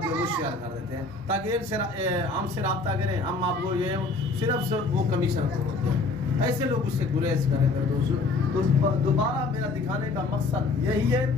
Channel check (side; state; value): right; quieter; 3.7 dB